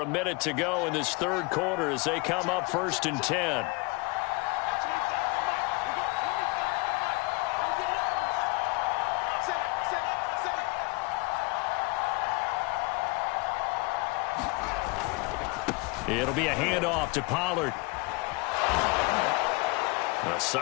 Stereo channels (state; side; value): quieter; right; 25.5 dB